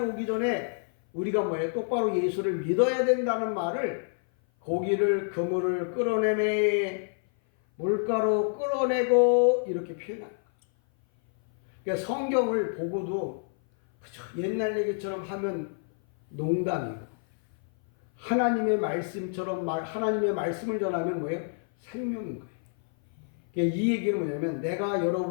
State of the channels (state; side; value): silent; right; 56 dB below the other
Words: 전에 우리가 뭐예요? 똑바로 예수를 믿어야 된다는 말을 고기를 그물을 끌어내매 물가로 끌어내고 이렇게 표현합니다. 그러니까 성경을 보고도 그저 옛날 얘기처럼 하면 농담이고 하나님의 말씀처럼 하나님의 말씀을 전하면 뭐예요? 생명인 거예요. 그러니까 이 얘기는 뭐냐면 내가